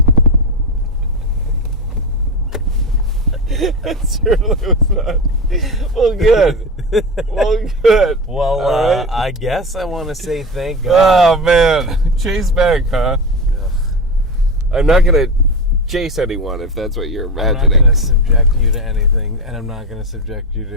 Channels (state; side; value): normal; both; correlation 0.21